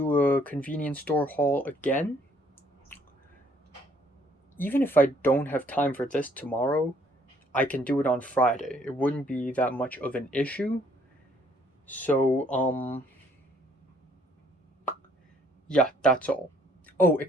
a convenience store haul again. Even if I don't have time for this tomorrow, I can do it on Friday. It wouldn't be that much of an issue. So, yeah, that's all.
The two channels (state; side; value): normal; both; correlation 0.64